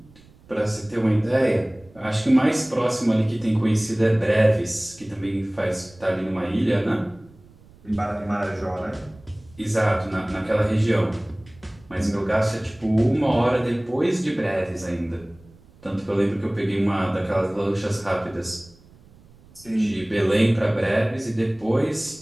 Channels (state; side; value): noise; right; rumble, 26 dB below the sound